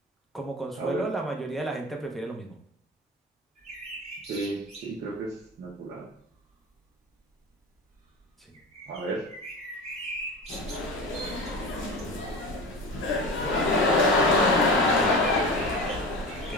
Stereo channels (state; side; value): normal; both; correlation 0.30